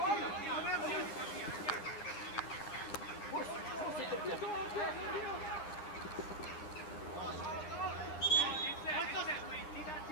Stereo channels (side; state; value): right; late; 9.9 ms